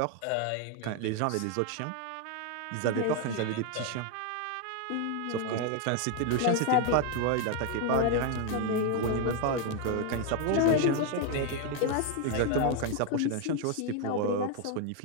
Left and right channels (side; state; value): both; different; correlation 0.01